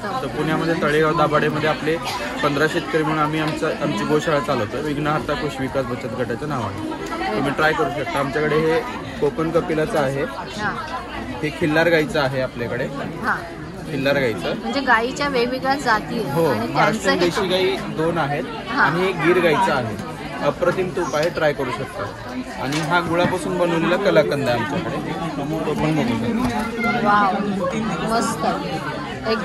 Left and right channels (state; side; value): identical; both; correlation 1.00